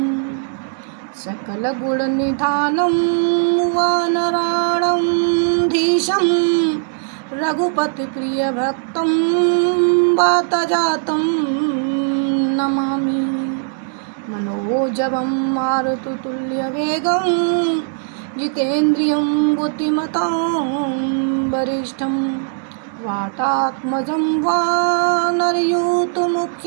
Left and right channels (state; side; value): silent; left; digital silence